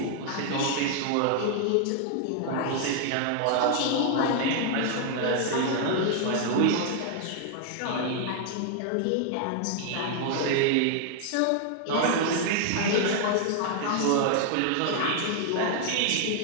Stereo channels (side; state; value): both; different; correlation 0.00